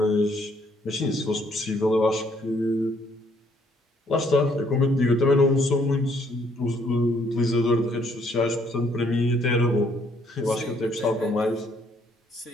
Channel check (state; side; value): normal; both; correlation 0.67